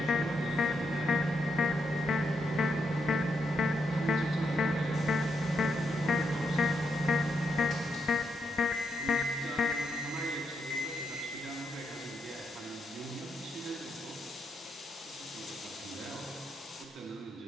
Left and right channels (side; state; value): both; normal; correlation 0.80